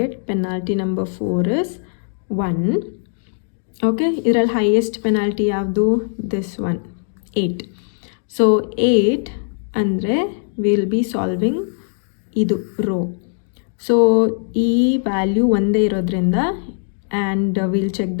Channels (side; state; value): right; silent; digital silence